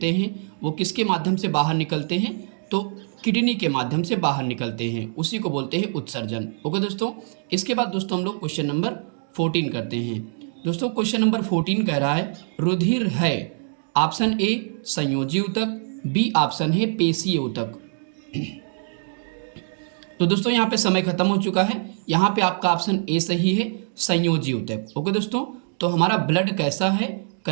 हैं, वो किसके माध्यम से बाहर निकलते हैं, तो किडनी के माध्यम से बाहर निकलते हैं, उसी को बोलते हैं उत्सर्जन। ओके दोस्तों, इसके बाद दोस्तों हम लोग क्वेश्चन नंबर 14 करते हैं। दोस्तों क्वेश्चन नंबर 14 कह रहा है, रुधिर है। ऑप्शन ए संयोजी ऊतक, बी ऑप्शन है पेशीय ऊतक। तो दोस्तों यहाँ पे समय खत्म हो चुका है। यहाँ पे आपका ऑप्शन ए सही है, संयोजी ऊतक। ओके दोस्तों, तो हमारा ब्लड कैसा है,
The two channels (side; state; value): left; silent; digital silence